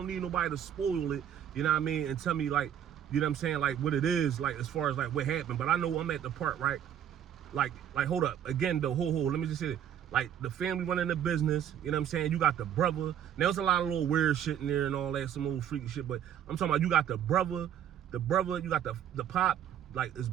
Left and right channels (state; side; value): quieter; left; 9.8 dB